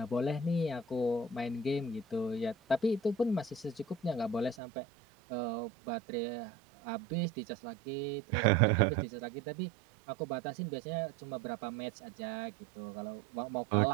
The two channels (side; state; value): left; drops out; at 4.5 s